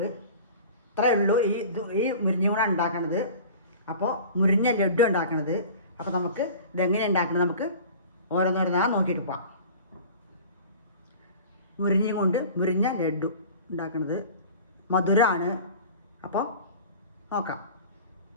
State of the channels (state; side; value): inverted; both; correlation -0.40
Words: ഇത്രയേ ഉള്ളൂ ഈ മുരിങ്ങ കൂടെ ഉണ്ടാക്കണത്. അപ്പോൾ മുരിങ്ങ ലഡു ഉണ്ടാക്കണത്. അപ്പോൾ നമുക്ക് ഇതെങ്ങനെ ഉണ്ടാക്കണത് നമുക്ക് ഓരോന്നോരോന്നാ നോക്കിയിട്ട് പോവാം. മുരിങ്ങ കൊണ്ട് മുരിങ്ങ ലഡു ഉണ്ടാക്കുന്നത് മധുരമാണ്. അപ്പോൾ നോക്കാം.